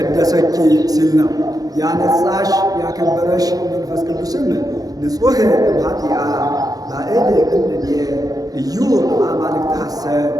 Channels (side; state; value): left; late; 0.18 ms